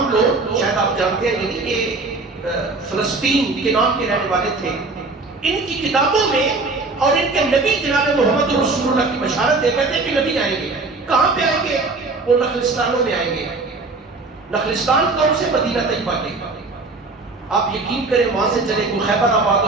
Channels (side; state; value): left; quieter; 3.6 dB